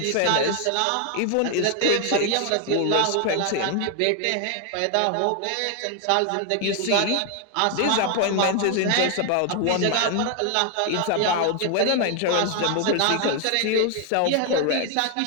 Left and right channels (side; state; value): both; different; correlation 0.00